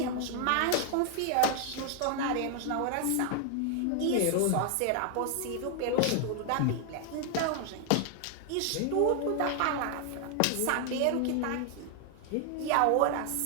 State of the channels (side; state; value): both; different; correlation 0.00